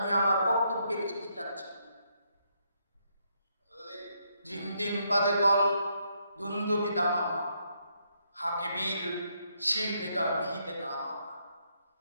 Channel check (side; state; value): both; inverted; correlation -0.76